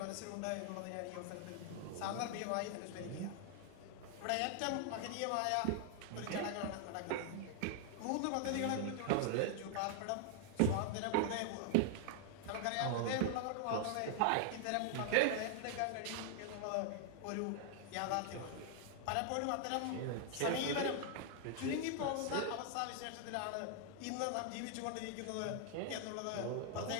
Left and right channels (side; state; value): both; different; correlation 0.00